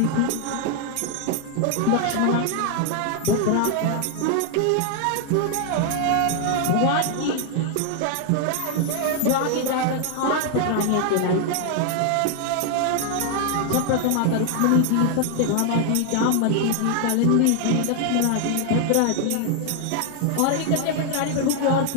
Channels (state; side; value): different; both; correlation 0.00